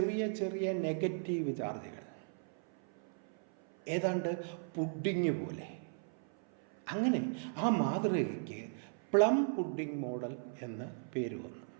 ചെറിയ നെഗറ്റീവ് ചാർജുകൾ, ഏതാണ്ട് പുഡിങ് പോലെ. അങ്ങനെ ആ മാതൃകയ്ക്ക് പ്ലം പുഡിംഗ് മോഡൽ എന്ന് പേര് വന്നു.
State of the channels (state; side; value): silent; left; 53 dB below the other